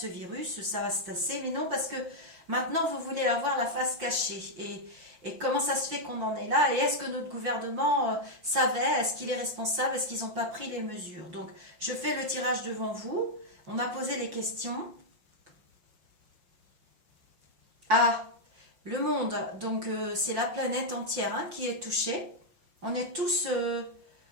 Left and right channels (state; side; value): late; left; 5.7 ms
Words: virus, ça va se tasser. Mais non, parce que maintenant, vous voulez avoir la face cachée. Et comment ça se fait qu'on en est là? Et est-ce que notre gouvernement savait? Est-ce qu'il est responsable? Est-ce qu'ils n'ont pas pris les mesures? Donc, je fais le tirage devant vous. On a posé les questions. Ah, le monde, donc c'est la planète entière hein, qui est touchée. On est tous